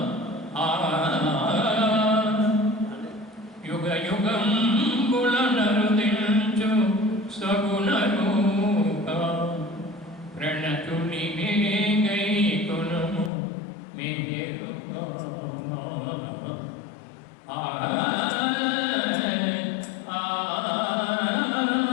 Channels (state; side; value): drops out; right; at 13.3 s